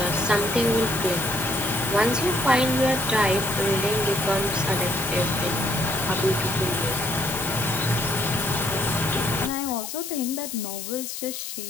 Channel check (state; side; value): noise; left; hiss, 8 dB below the sound